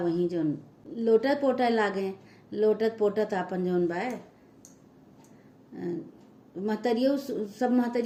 जौन लोटत पोटत अपन जौन बा महतरियों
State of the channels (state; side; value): identical; both; correlation 1.00